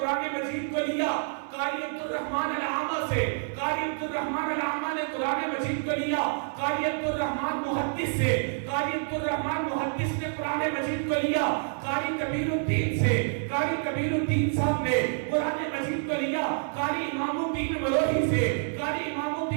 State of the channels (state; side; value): silent; left; 59 dB below the other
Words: مجید کو لیا قاری عبد الرحمن العامہ سے، قاری عبد الرحمن العامہ نے قرآن مجید کو لیا قاری عبد الرحمن محدث سے، قاری عبد الرحمن محدث نے قرآن مجید کو لیا قاری کبیر الدین سے، قاری کبیر الدین صاحب نے قرآن مجید کو لیا قاری امام الدین مروحی سے، قاری امام